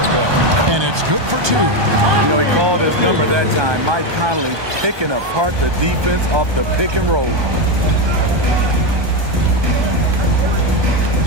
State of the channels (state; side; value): late; left; 1.2 ms